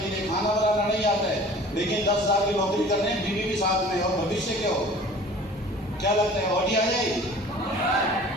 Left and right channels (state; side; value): normal; both; correlation 0.45